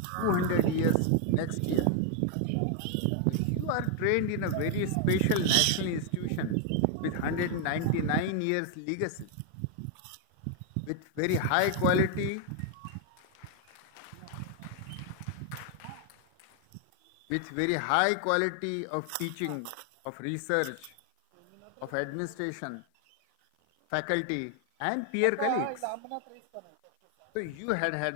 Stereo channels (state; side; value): different; both; correlation 0.00